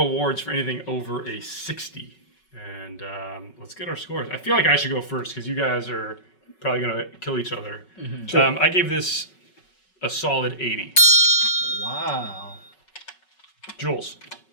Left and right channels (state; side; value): late; right; 5.4 ms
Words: for anything over a 60. And let's get our scores. I feel like I should go first because you guys are probably going to kill each other. Mm-hmm. Sure. I gave this a solid 80. Wow. Jules.